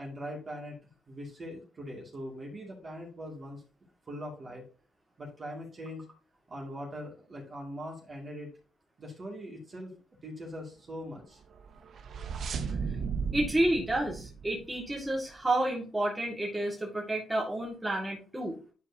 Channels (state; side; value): normal; both; correlation 0.88